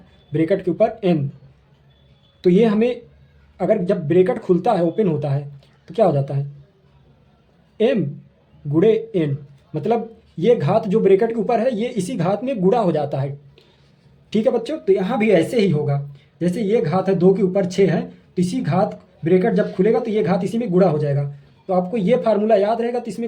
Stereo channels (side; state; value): both; identical; correlation 1.00